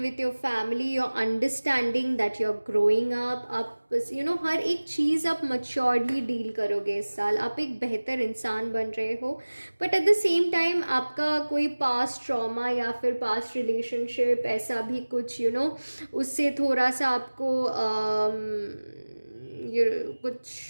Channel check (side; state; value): both; inverted; correlation -1.00